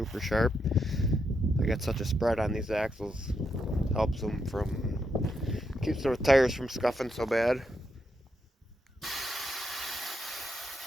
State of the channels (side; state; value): both; normal; correlation 0.81